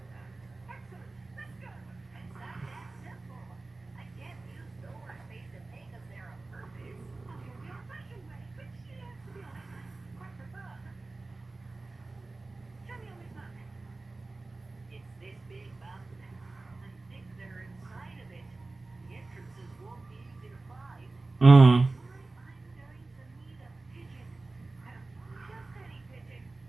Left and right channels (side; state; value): left; quieter; 3.3 dB